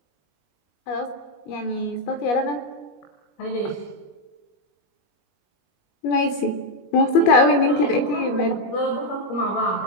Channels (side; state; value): right; late; 21 ms